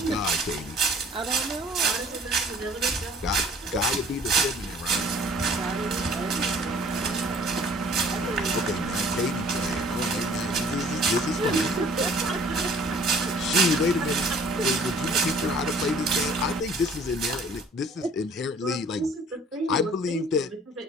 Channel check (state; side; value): normal; both; correlation 0.54